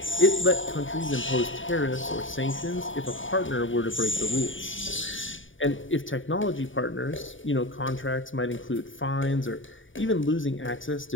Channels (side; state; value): right; late; 0.57 ms